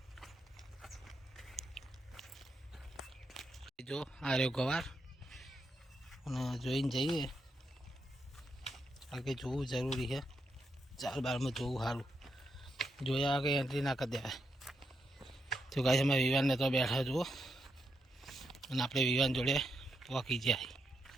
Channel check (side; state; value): both; normal; correlation 0.82